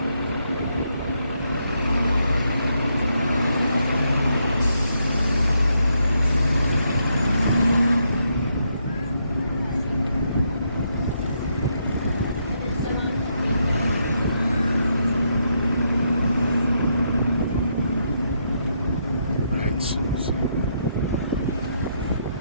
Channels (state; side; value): inverted; both; correlation -0.77